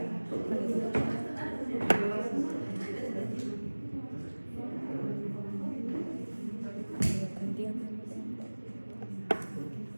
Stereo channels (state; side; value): inverted; both; correlation -1.00